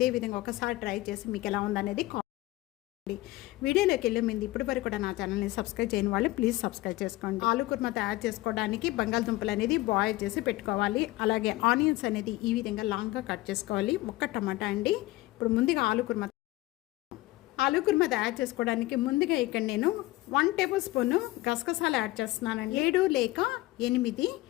విధంగా ఒకసారి ట్రై చేసి మీకు ఎలా ఉందనేది కామెంట్. వీడియోలోకి వెళ్ళే ముందు ఇప్పటి వరకు కూడా నా ఛానల్ని సబ్స్క్రైబ్ చేయని వాళ్ళు ప్లీజ్ సబ్స్క్రైబ్ చేసుకోండి. ఆలు కుర్మా తయారు చేసుకోవడానికి బంగాళదుంపలు అనేది బాయిల్ చేసి పెట్టుకోవాలి. అలాగే ఆనియన్స్ అనేది ఈ విధంగా లాంగ్గా కట్ చేసుకోవాలి. ఒక్క టమాటా అండి. ఇప్పుడు ముందుగా ఆలు కుర్మా తయారు చేసుకోవడానికి ముందుగా ఇక్కడ నేను 1 టేబుల్ స్పూన్ గసగసాలు యాడ్ చేస్తున్నానండి. 7 లేక 8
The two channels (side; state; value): right; quieter; 18.7 dB